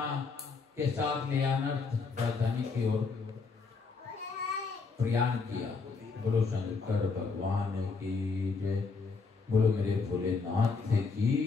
के साथ ले अनर्थ राजधानी की ओर प्रयाण किया। बोलो शंकर भगवान की जय, बोलो मेरे भोलेनाथ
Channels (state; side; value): quieter; right; 4.6 dB